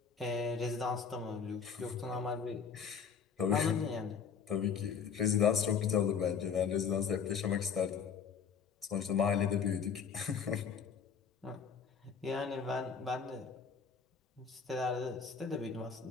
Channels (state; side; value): quieter; right; 6.5 dB